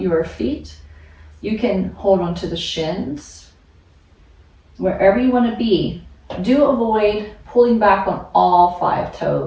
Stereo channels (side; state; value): both; identical; correlation 1.00